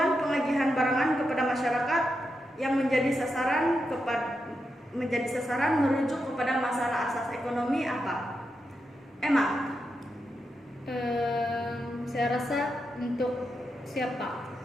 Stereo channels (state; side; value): normal; both; correlation 0.86